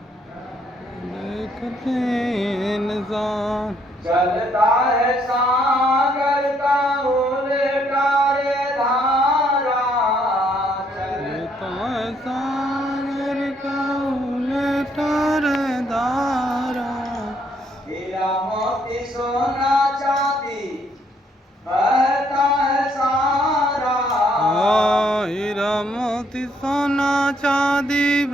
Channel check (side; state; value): both; normal; correlation 0.69